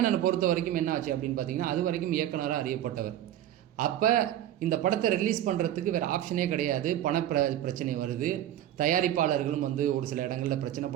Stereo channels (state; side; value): quieter; left; 12.0 dB